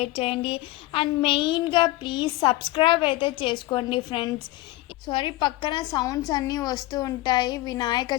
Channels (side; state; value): right; quieter; 18.0 dB